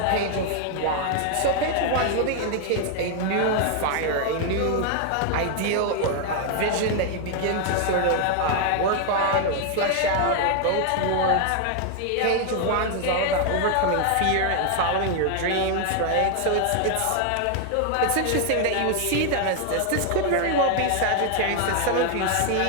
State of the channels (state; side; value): different; both; correlation 0.00